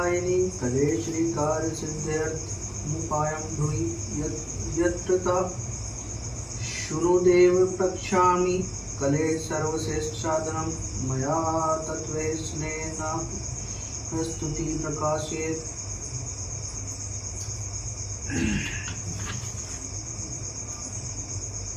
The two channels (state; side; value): identical; both; correlation 1.00